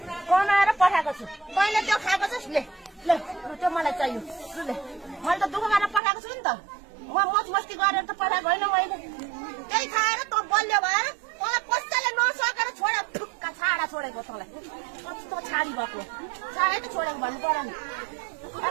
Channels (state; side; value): drops out; left; at 6.0 s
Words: कमाएर पठाएको छु तैँले त्यो खाएको छस् ले ले त्यो मलाई चाहियो ले मैले त दुःख गरेर पठाएको छु नि त म मच मस्ती गरेर त पठाएको होइन मैले त्यही खाएर त बलियो भएर मलाई कसैले नसकेर छोडे ठुक्का छाडा छोडेको तँलाई कस्तो छाडी भएको छाडै त छोडेको भन्नु पर्यो नि